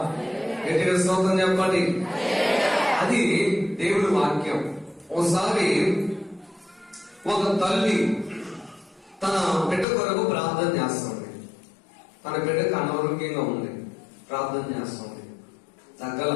గట్టిగా స్తోత్రం చెప్పండి. అది దేవుడి వాక్యం. ఒకసారి ఒక తల్లి తన బిడ్డ కొరకు ప్రార్థన చేస్తుంది. తన బిడ్డకు అనారోగ్యంగా ఉంది, ప్రార్థన చేస్తుంది. తగ్గల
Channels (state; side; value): drops out; right; at 9.9 s